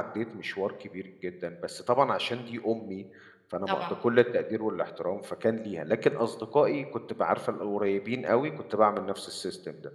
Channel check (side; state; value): both; identical; correlation 1.00